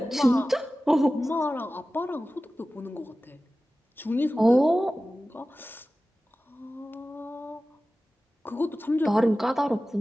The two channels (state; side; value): normal; both; correlation 0.96